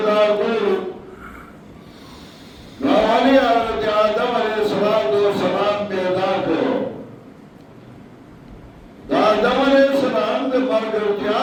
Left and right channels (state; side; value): identical; both; correlation 1.00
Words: کر نوالی حضرت آدم علیہ السلام پیدا کر دا آدم علیہ السلام دے